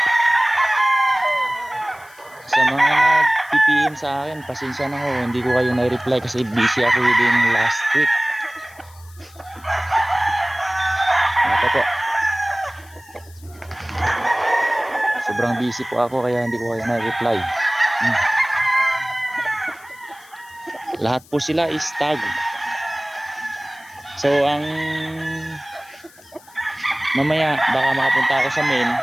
Sa mga nag-PPM sa akin, pasensya na ho. Hindi ko kayo na-reply kasi busy ako din last week. Ito po. Sobrang busy po ako kaya hindi ko kayo na-reply. Lahat po sila is stag. So ang mamaya baka makapunta ako sa main,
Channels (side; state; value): left; noise; hiss, 25 dB below the sound